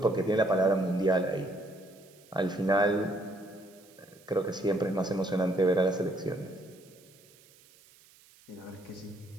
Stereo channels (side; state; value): right; noise; hiss, 27 dB below the sound